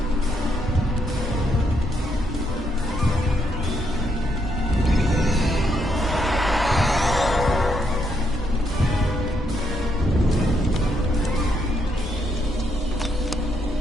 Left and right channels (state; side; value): normal; both; correlation 0.77